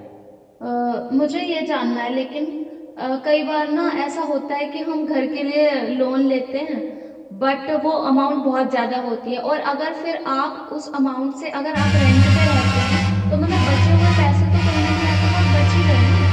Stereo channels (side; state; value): both; identical; correlation 1.00